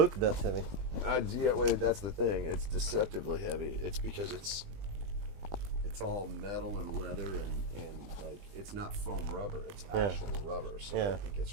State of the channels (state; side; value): late; left; 20 ms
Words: that heavy. Yeah, well, that's the thing. It's deceptively heavy. It's because it's all metal and leather and like, it's not foam rubber. It's actual rubber. So Yeah. it gets